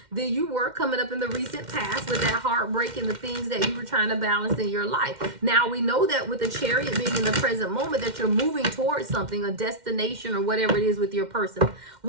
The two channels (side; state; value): left; late; 2.1 ms